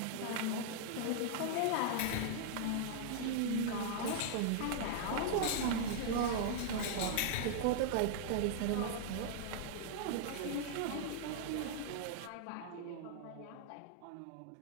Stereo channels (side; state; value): both; different; correlation -0.01